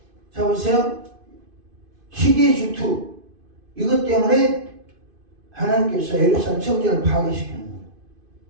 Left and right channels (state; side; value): late; left; 2.5 ms